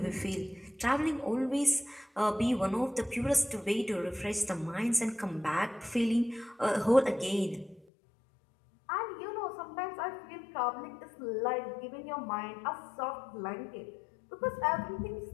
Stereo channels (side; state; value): right; drops out; at 7.9 s